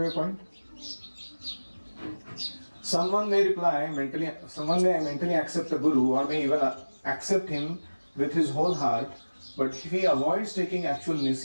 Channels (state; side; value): inverted; both; correlation -1.00